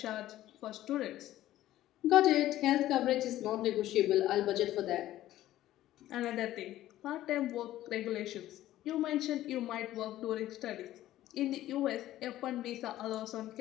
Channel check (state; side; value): quieter; right; 14.1 dB